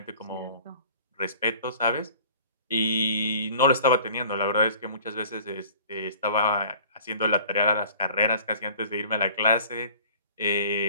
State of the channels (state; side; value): inverted; both; correlation -0.47